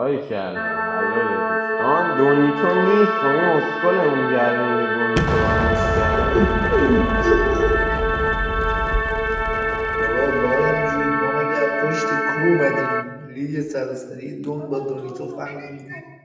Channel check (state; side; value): identical; both; correlation 1.00